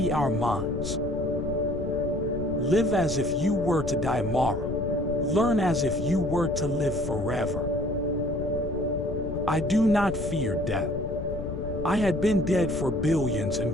our minds. Live as if you were to die tomorrow. Learn as if you were to live forever. I do not fear death. I had been dead for billions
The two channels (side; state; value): left; noise; rumble, 6 dB below the sound